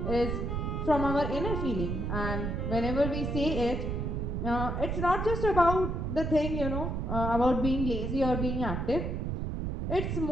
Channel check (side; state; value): right; noise; rumble, 2 dB below the sound